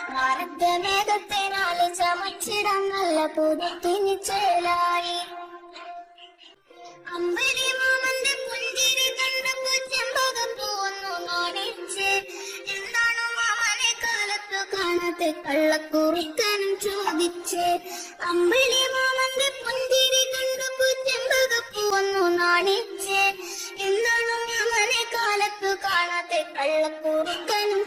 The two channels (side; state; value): both; identical; correlation 1.00